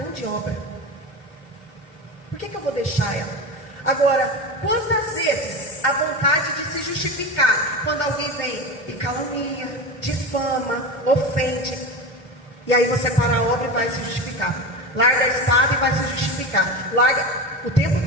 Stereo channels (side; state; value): both; normal; correlation 0.24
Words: obra, por que eu vou deixar ela? Agora, quantas vezes a vontade de se justificar, quando alguém vem e calunia, difama, ofende, e aí você para a obra e vai se justificar, larga a espada e vai se justificar, larga o